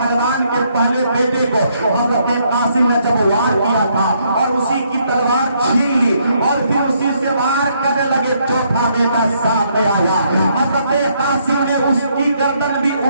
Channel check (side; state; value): both; inverted; correlation -0.72